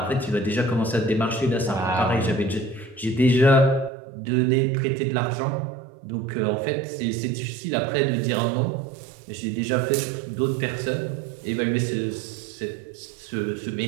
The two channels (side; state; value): left; drops out; at 3.9 s